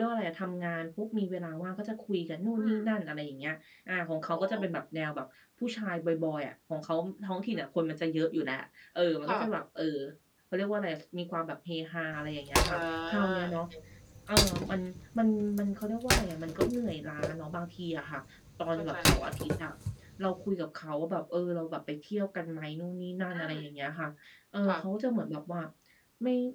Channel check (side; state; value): both; identical; correlation 1.00